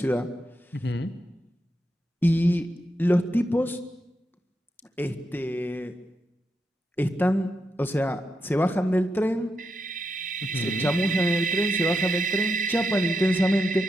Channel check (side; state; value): both; normal; correlation 0.84